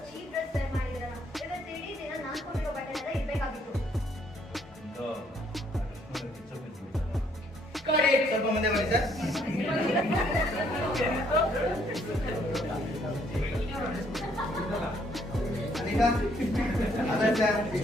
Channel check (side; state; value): both; normal; correlation 0.67